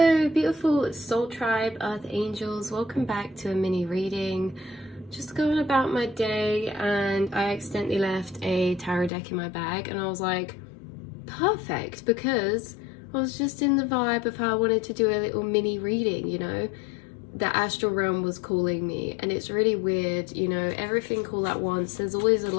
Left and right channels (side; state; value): right; drops out; at 9.1 s